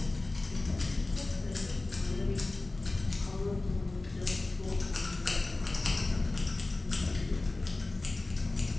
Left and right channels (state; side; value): quieter; right; 3.1 dB